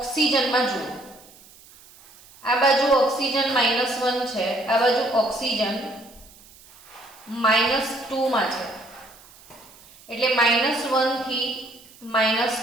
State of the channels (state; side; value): noise; right; hiss, 24 dB below the sound